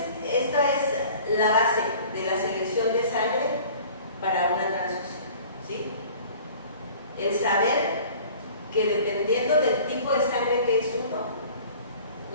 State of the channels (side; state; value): both; inverted; correlation -0.47